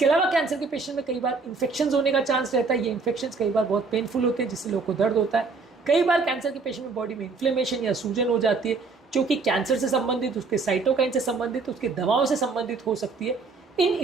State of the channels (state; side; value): quieter; left; 4.3 dB